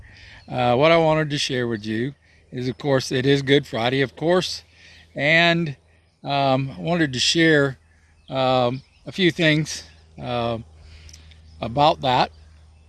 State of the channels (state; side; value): identical; both; correlation 1.00